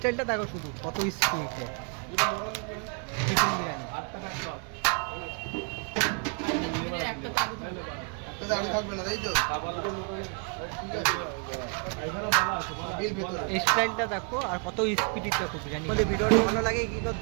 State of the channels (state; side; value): quieter; left; 39.1 dB